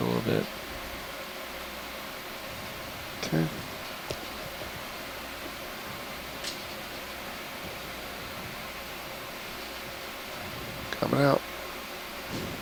a little bit. Okay. Coming out.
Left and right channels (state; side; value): identical; both; correlation 1.00